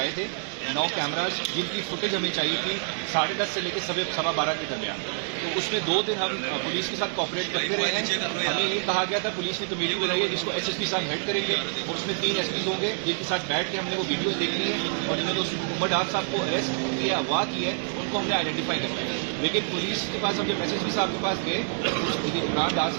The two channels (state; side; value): silent; left; 60 dB below the other